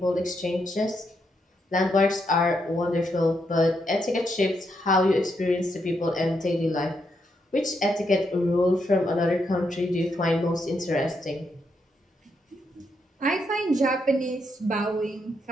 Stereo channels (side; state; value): both; normal; correlation 0.79